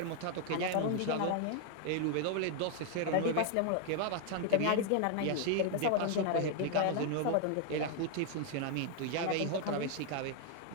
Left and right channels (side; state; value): both; different; correlation 0.00